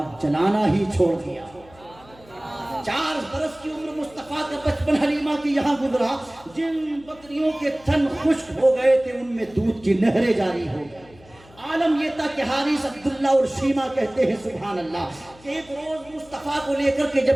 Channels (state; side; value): noise; left; hum, 25 dB below the sound